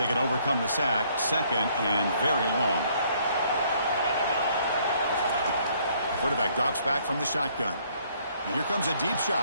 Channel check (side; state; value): both; inverted; correlation -0.64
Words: can overcome the sack. 2nd and very long. Quarterback drops back from the shotgun. And here comes a deep